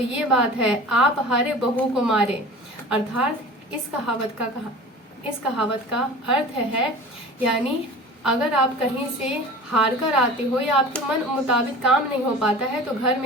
ये बात है, आप हारे बहू को मारे। अर्थात इस कहावत का अर्थ है, यानी अगर आप कहीं से हार कर आते हो या आपके मन मुताबिक काम नहीं हो पाता है तो घर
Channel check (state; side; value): normal; both; correlation 0.39